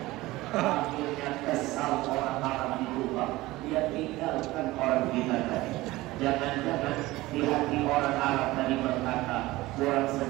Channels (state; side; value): quieter; left; 18.9 dB